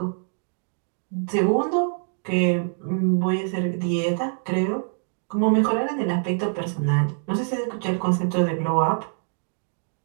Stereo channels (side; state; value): left; silent; digital silence